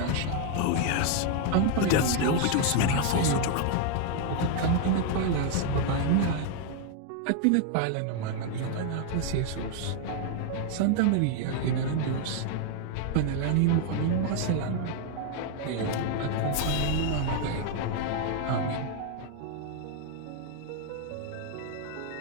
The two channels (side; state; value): both; different; correlation 0.00